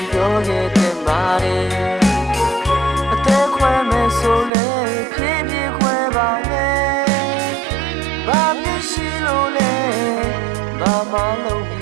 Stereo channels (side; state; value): left; drops out; at 4.5 s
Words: ပြောခဲ့တဲ့မာရီအသက်ခွဲမယ်ဆိုလည်းဖြည်းဖြည်းခွဲပါနဲ့ဘာမြင်ရှိလို့လဲဘာမှလုံးပြီ